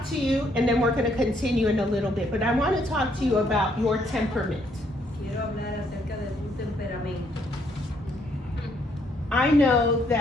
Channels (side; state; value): both; normal; correlation 0.70